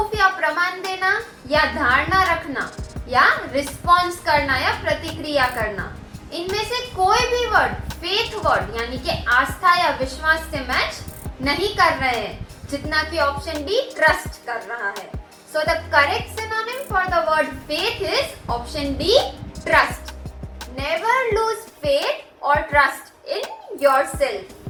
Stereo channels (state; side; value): identical; both; correlation 1.00